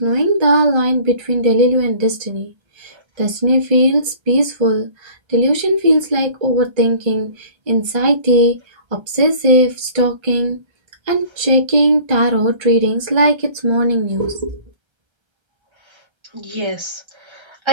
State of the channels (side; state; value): left; late; 1.3 ms